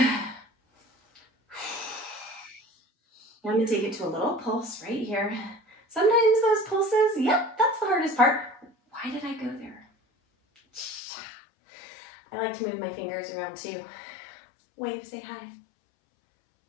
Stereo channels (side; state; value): right; drops out; at 11.0 s